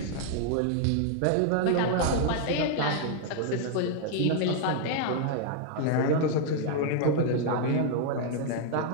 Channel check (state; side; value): different; both; correlation 0.00